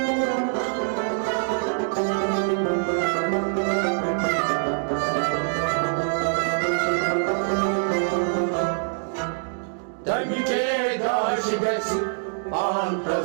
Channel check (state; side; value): silent; left; digital silence